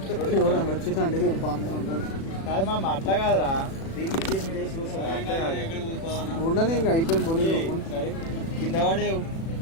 ఎవరైనా వచ్చిందంటే బాగానే ఉంటుంది. కాదు మా అట్లా కాదురా, దీన్ని వేసి కూర్చోండి. ఉండని ఇంకా అయిపోయింది కొని. సరే కింద పడేవు.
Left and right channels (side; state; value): right; late; 36 ms